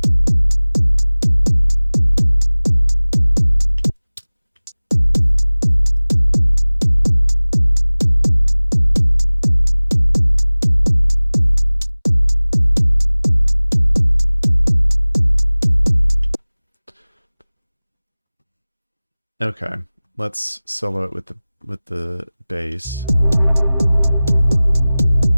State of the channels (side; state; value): both; inverted; correlation -0.99